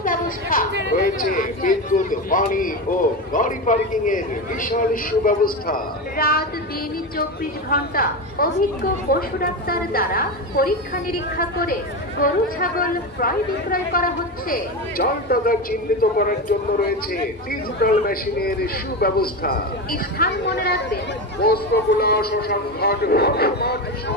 রয়েছে বিদ্যুৎ, পানি ও গাড়ি পার্কিং এর বিশাল সুব্যবস্থা। রাত দিন 24 ঘন্টা অভিজ্ঞ পশু ডাক্তার দ্বারা পরীক্ষা নিরীক্ষা করে গরু ছাগল ক্রয় বিক্রয় করা হচ্ছে। জাল টাকা চিহ্নিত করার জন্য রয়েছে ডিজিটাল মেশিনের সুব্যবস্থা। স্থান মনে রাখবেন, পোস্তগোলা শ্মশানঘাট বালুর মাঠ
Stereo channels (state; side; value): normal; both; correlation 0.18